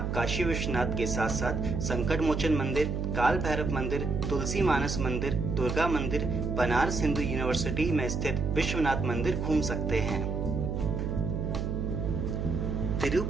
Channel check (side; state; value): right; noise; hum, 2 dB below the sound